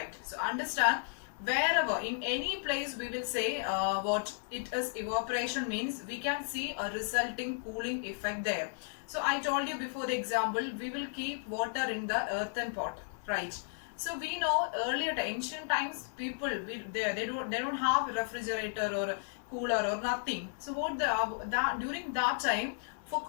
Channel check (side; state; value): right; silent; digital silence